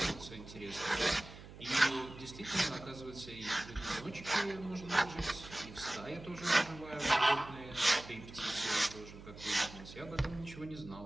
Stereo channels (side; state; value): right; noise; hum, 15 dB below the sound